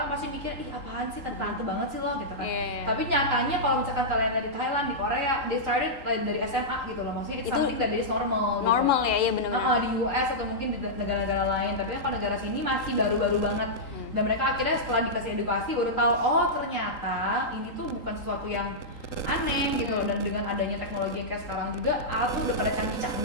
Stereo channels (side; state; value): right; late; 3.8 ms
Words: pasti mikir ih apaan sih, tante banget sih lo gitu kan. Tapi nyatanya kalau misalkan kalian dari Thailand, di Korea, they started dari SMA gitu loh. Maksudnya it's something that is normal gitu. Normal ya, iya benar-benar. Di US atau mungkin di negara-negara lain. Tapi kan kalau negara sini masih baru-baru banget. Dan mereka akhirnya setelah dikasih edukasi baru tahu oh ternyata ini tuh bukan sesuatu yang aneh gitu loh. Dan dengan adanya teknologi yang kayak sekarang juga alat tuh udah pada